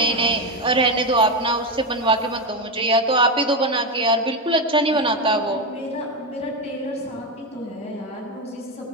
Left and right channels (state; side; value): normal; both; correlation 0.12